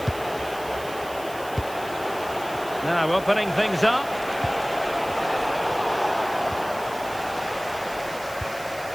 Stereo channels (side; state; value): right; noise; hiss, 17 dB below the sound